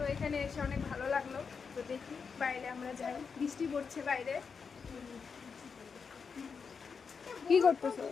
এখানে এসে অনেক ভালো লাগলো। তো দেখি বাইরে আমরা যাই, বৃষ্টি পড়ছে বাইরে। কি করতেছো?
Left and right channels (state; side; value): quieter; right; 5.7 dB